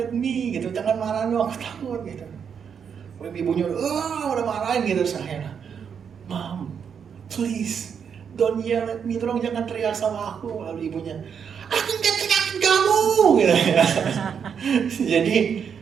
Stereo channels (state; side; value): quieter; left; 7.2 dB